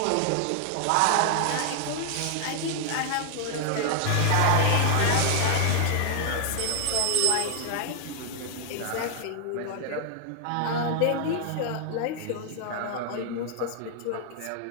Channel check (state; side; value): different; both; correlation 0.00